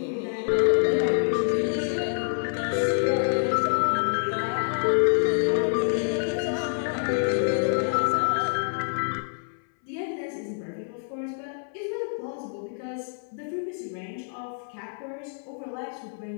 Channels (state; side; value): silent; right; 60 dB below the other